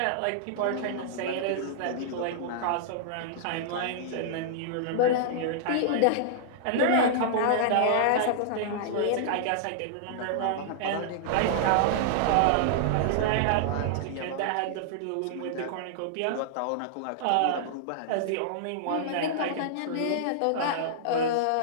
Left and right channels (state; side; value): different; both; correlation -0.02